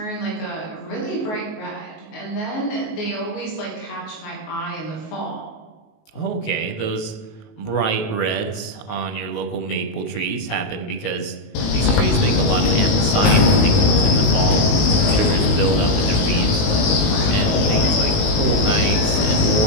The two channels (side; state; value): right; late; 19 ms